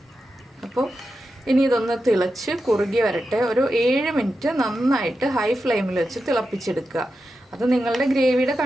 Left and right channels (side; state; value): both; normal; correlation 0.90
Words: അപ്പോൾ ഇനി ഇതൊന്ന് തിളച്ച് കുറുകി വരട്ടെ. ഒരു 7 മിനിറ്റ് നന്നായിട്ട് ഹൈ ഫ്ലെയിമിൽ വെച്ച് തിളപ്പിച്ചെടുക്കുക. അത് നിങ്ങളുടെ ഗ്രേവിയുടെ